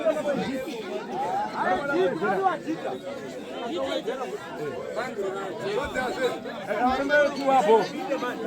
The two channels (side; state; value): both; identical; correlation 1.00